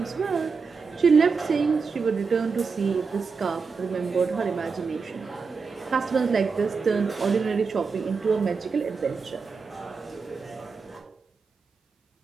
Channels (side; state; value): left; quieter; 5.0 dB